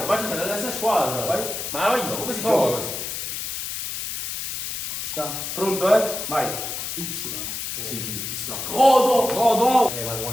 Ma ci sta nella stessa squadra. Vai. Ma vai, come si gioca così? Ci sta. Pronto, eh? Vai. Y. Sì, ci sta. Godo. Godo! Ma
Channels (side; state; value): left; noise; hiss, 5 dB below the sound